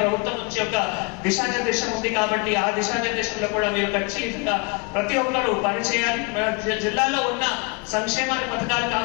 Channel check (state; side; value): quieter; right; 29.9 dB